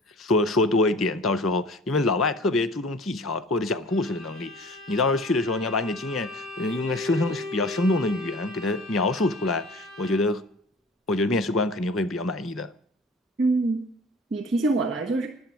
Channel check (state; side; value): normal; both; correlation 0.45